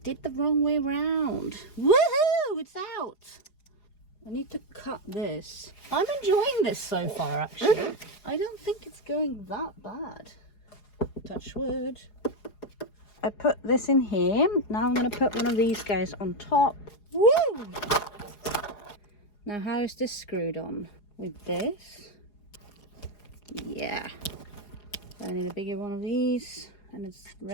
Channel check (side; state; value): right; late; 4.8 ms